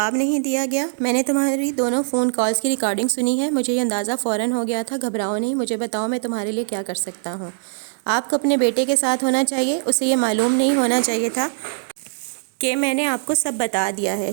نہیں دیا گیا۔ میں نے تمہاری دونوں فون کالز کی ریکارڈنگ سنی ہے، مجھے یہ اندازہ فوراً ہو گیا تھا۔ گھبراؤ نہیں، مجھے بتاؤ میں تمہارے لیے کیا کر سکتا ہوں۔ آپ کو اپنے بیٹے کے ساتھ ہونا چاہیے، اسے یہ معلوم نہیں ہونا چاہیے تھا کہ میں نے آپ کو سب بتا دیا ہے۔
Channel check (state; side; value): silent; left; digital silence